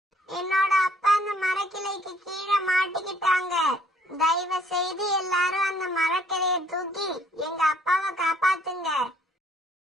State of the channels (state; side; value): normal; both; correlation 0.62